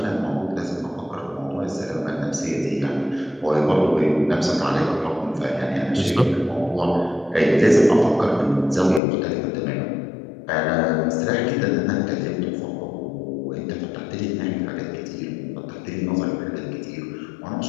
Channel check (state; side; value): drops out; right; at 9.0 s